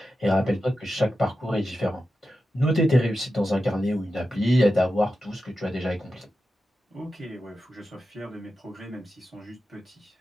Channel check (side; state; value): both; normal; correlation 0.91